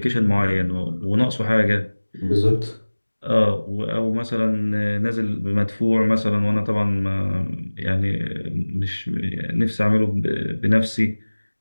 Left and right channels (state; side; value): inverted; both; correlation -1.00